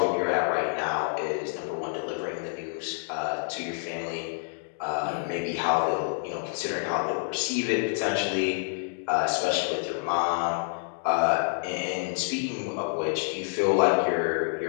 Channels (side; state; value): right; silent; 59 dB below the other